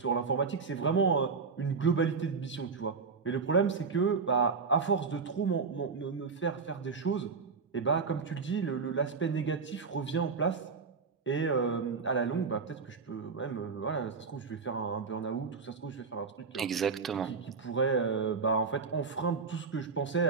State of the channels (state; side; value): quieter; left; 5.0 dB